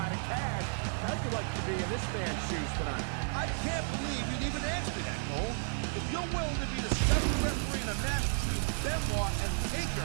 And Taz, how'd you like to be in this man's shoes tonight? I can't believe you'd even ask me that, Cole. If you're willing to be the special referee in a match between Benoit and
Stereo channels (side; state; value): left; silent; digital silence